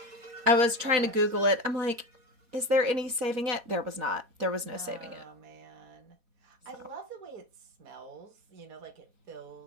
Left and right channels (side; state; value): left; late; 4.2 ms